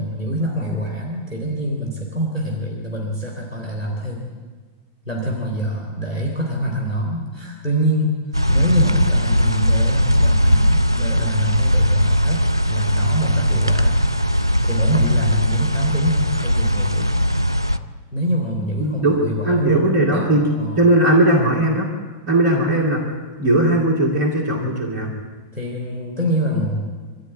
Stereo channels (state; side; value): inverted; both; correlation -0.54